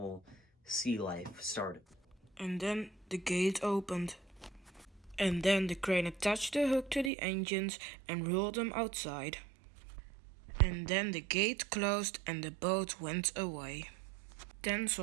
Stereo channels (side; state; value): left; drops out; at 7.1 s